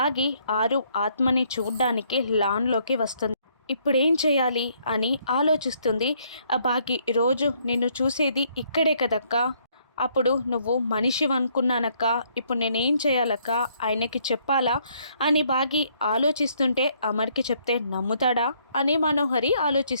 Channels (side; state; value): both; inverted; correlation -0.68